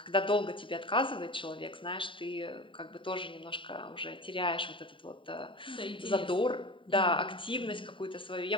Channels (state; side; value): late; right; 0.25 ms